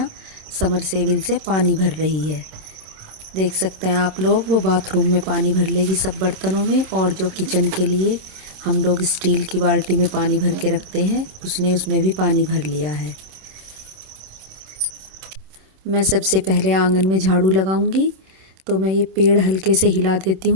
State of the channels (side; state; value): left; late; 26 ms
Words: समरसेबिल से पानी भर रही है। देख सकते हैं आप लोग, वो बाथरूम में पानी भर लेगी सब बर्तनों में, और जो किचन के लिए हम लोग स्टील की बाल्टी में पानी भर के रखते हैं उसने उसमें भी पानी भर लिया है। मैं सबसे पहले आंगन में झाड़ू लगाऊंगी, तो मैं ये पेड़ हल्के से हिला देती